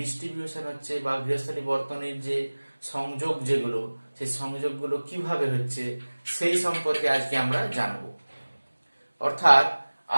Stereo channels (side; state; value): both; inverted; correlation -1.00